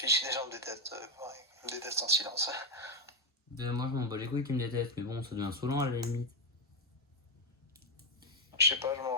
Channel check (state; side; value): normal; both; correlation 0.05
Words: si les gens me détestent. Ouais, ils me détestent en silence. Moi je m'en bats les couilles qui me détestent, mais bon, ça devient saoulant à la limite. Je sais pas, je m'en